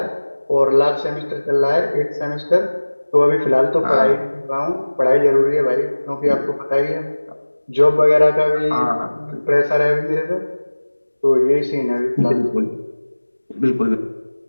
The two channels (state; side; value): inverted; both; correlation -1.00